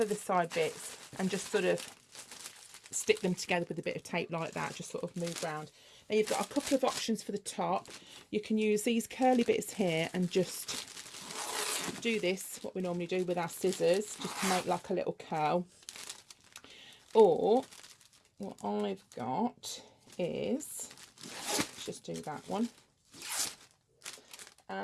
the side bits and just sort of stick them together with a bit of tape like that, just sort of move round. Now you've got a couple of options for the top. You can use these curly bits here and just do this, what we normally do with our scissors, just to make like a little curl. Or what I've got is, let's just do that one.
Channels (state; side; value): identical; both; correlation 1.00